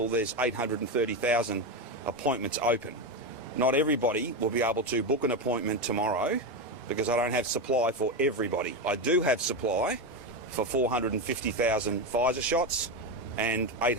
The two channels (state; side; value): normal; both; correlation 0.13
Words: there's 830,000 appointments open. Not everybody will be able to book an appointment tomorrow because I don't have supply for everybody. I do have supply for 450,000 Pfizer shots and